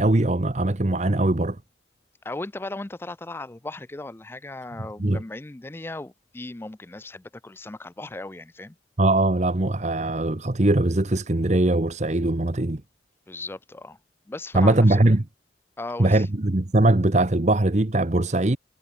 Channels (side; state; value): both; normal; correlation 0.65